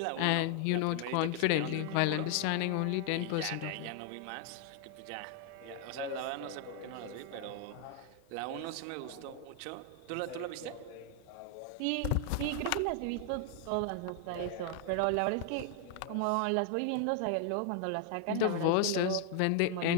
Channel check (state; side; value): different; both; correlation 0.00